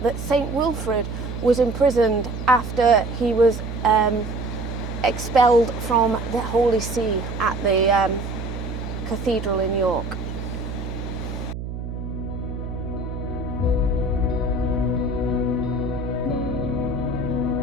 that St. Wilfrid was imprisoned after he was expelled from the Holy See at the cathedral in York.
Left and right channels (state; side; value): noise; right; hum, 7 dB below the sound